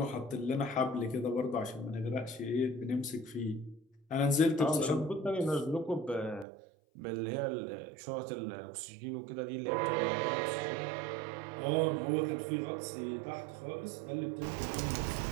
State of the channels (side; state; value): left; drops out; at 6.5 s